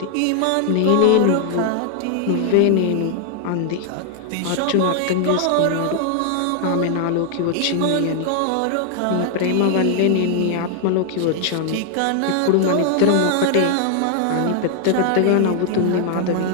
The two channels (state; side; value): different; both; correlation 0.00